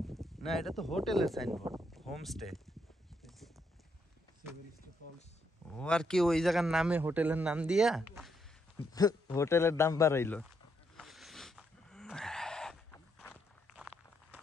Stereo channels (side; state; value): both; normal; correlation 0.76